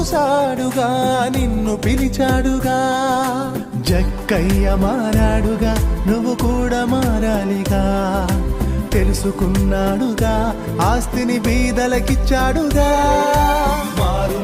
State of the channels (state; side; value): identical; both; correlation 1.00